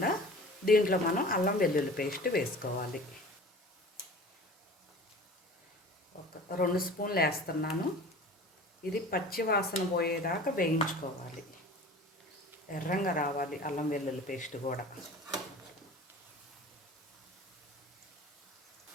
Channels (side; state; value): both; normal; correlation 0.41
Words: దీంట్లో మనం అల్లం వెల్లుల్లి పేస్ట్ వేసుకోవాలి. ఒక 2 స్పూన్లు వేస్తున్నాను. ఇది పచ్చి వాసన పోయేదాకా వేయించుకోవాలి. ఎర్రంగా రావాలి అల్లం వెల్లుల్లి పేస్ట్ కూడా.